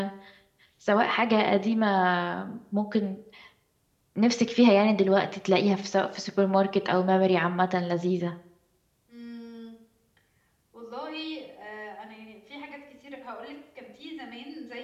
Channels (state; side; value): identical; both; correlation 1.00